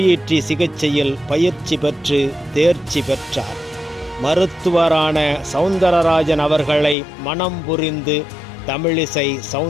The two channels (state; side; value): drops out; right; at 7.0 s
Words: சிகிச்சையில் பயிற்சி பெற்று தேர்ச்சி பெற்றார். மருத்துவரான சவுந்தரராஜன் அவர்களை மனம் புரிந்து தமிழிசை